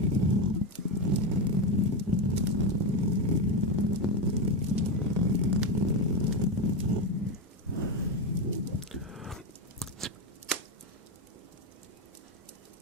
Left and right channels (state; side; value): normal; both; correlation 0.13